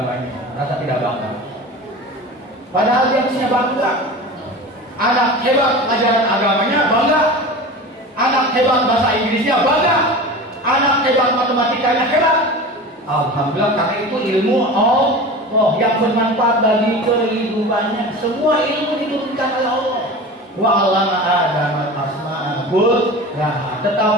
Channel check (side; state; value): both; normal; correlation 0.33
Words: merasa tidak bangga. Padahal dia mestinya bangga. Anak hebat pelajaran agamanya bangga. Anak hebat bahasa Inggrisnya bangga. Anak hebat matematikanya hebat. Alhamdulillah, karena itu ilmu Allah yang bermanfaat bagi kehidupannya. Semua ilmu diturunkan oleh Allah. Wa 'allama Adam al-asma'a kullaha.